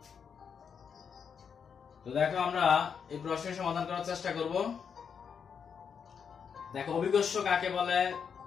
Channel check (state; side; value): quieter; right; 6.8 dB